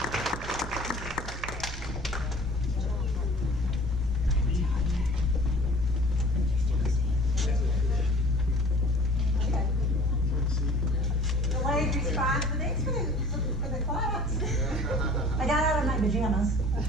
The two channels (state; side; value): normal; both; correlation 0.48